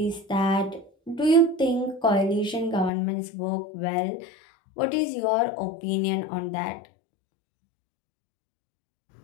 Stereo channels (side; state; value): right; drops out; at 2.9 s